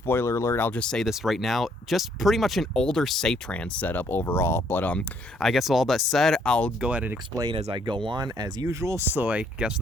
alert, I'll just say this right now, just pretty much an older Safetran setup overall. But I guess with all that said, I'll go ahead and explain as I go on as usual. So I guess with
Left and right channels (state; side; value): normal; both; correlation 0.67